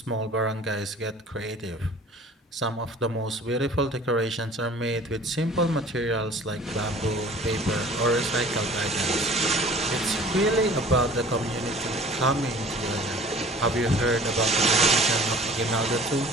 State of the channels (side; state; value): both; normal; correlation 0.47